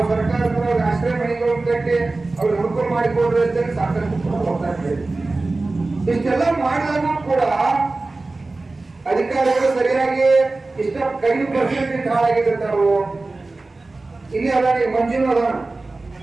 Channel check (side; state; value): left; quieter; 3.3 dB